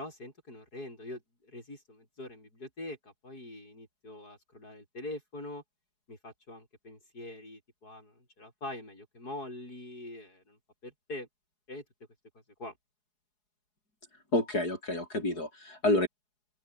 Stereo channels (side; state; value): right; late; 4.8 ms